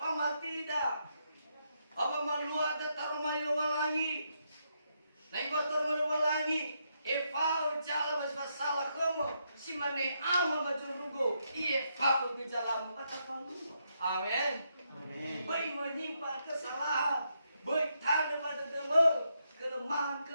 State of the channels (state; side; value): inverted; both; correlation -0.79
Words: tidak. Apa maluat taruh malu walangi. Naik batur maluwalangi, fau jala baswa salah kamu, si mane amal baju rugo, fau bijalamu kata palu. Amin. Amin. Baik menyimpan kesalahan, baik tanda pada demo,